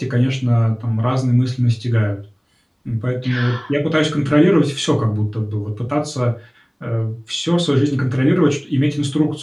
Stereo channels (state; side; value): identical; both; correlation 1.00